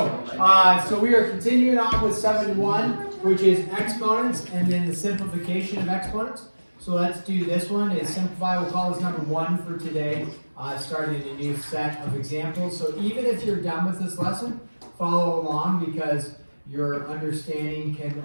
So we are continuing on with 7-1, which is exponents and then the simplification of exponents. So let's do this one. Is simplify. We'll call this number 1 for today. Starting a new set of examples. So even if you're done with this lesson, follow along because your understanding can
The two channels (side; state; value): both; inverted; correlation -1.00